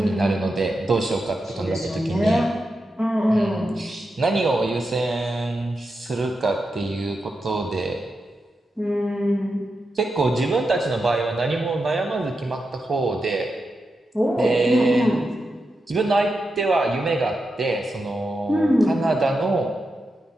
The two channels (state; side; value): normal; both; correlation 0.88